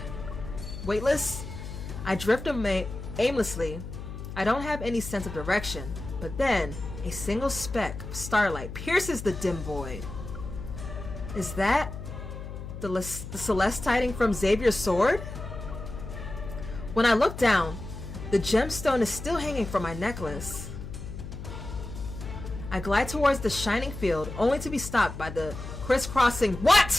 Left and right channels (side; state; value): left; noise; hum, 9 dB below the sound